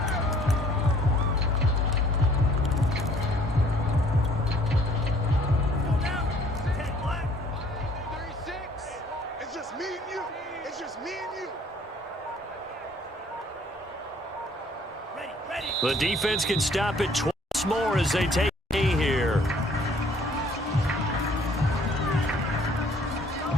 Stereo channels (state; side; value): normal; both; correlation 0.58